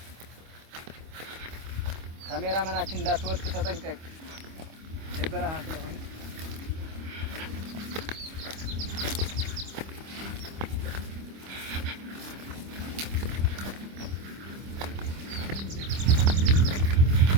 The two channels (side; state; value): left; late; 25 ms